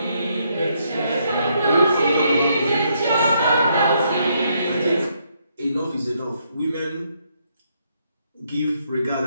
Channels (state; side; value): inverted; both; correlation -0.74